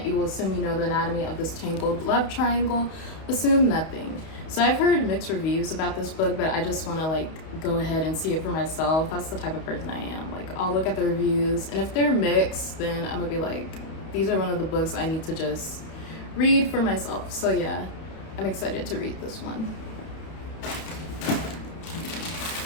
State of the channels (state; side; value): late; right; 31 ms